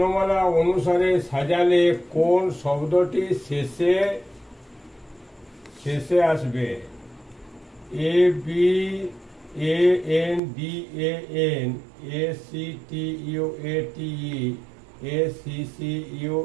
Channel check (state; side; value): drops out; left; at 10.4 s